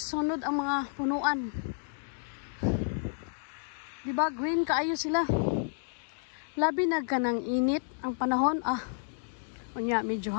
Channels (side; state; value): right; silent; digital silence